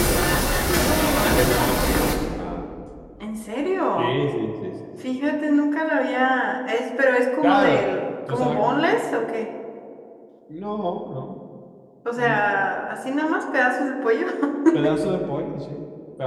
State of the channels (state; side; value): identical; both; correlation 1.00